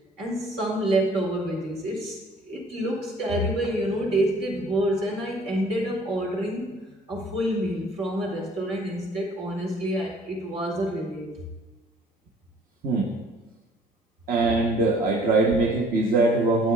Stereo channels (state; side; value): normal; both; correlation 0.56